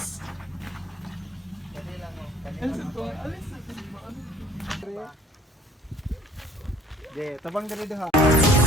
De, tabang dali ha.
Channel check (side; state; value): both; normal; correlation 0.55